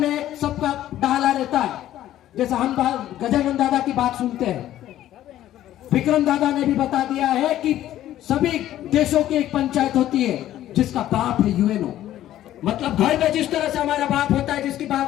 सबका डाला रहता है, जैसे हम गजानन दादा की बात सुनते हैं, विक्रम दादा ने भी बता दिया है कि सभी देशों की एक पंचायत होती है जिसका बाप है यूएनओ। मतलब घर में जिस तरह से हमारा बाप होता है जिसकी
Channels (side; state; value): right; quieter; 13.0 dB